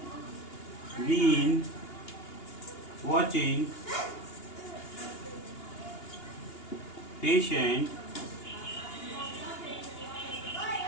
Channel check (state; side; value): late; right; 2.8 ms